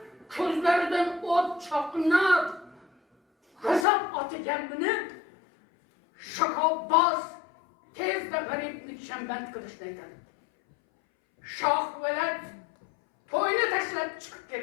ko'zlaridan o't chaqnab, g'azab otiganini Shahobbos tezda g'aribni shamband qilishni aytadi. Shohpo'lat to'yni tashlab chiqib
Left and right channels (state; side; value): drops out; right; at 3.9 s